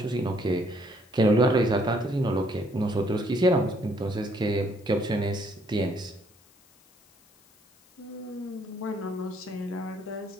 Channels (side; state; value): left; noise; hiss, 30 dB below the sound